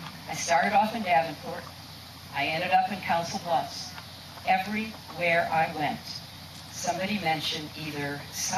I started off in Davenport. I ended up in Council Bluffs. Everywhere I went, somebody mentioned either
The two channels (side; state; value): both; identical; correlation 1.00